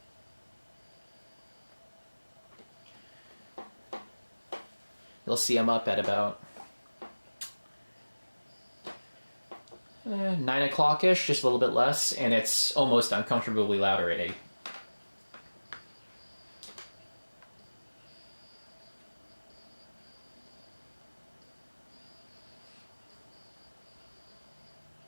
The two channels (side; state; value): both; inverted; correlation -1.00